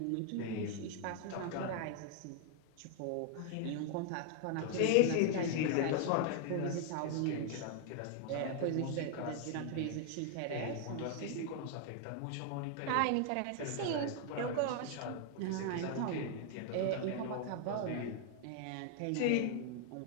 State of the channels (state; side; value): different; both; correlation 0.00